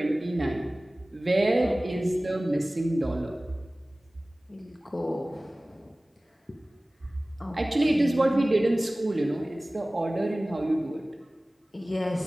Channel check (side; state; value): both; normal; correlation 0.98